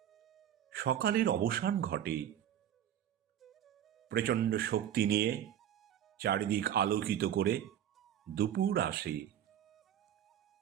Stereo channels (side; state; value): left; quieter; 10.4 dB